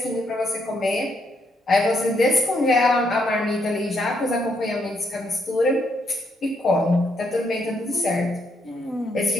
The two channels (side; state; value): both; normal; correlation 0.75